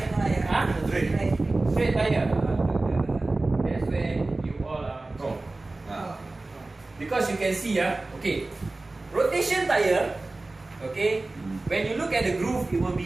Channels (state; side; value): quieter; left; 3.1 dB